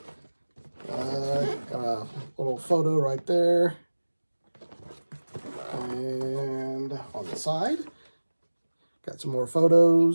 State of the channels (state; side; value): inverted; both; correlation -1.00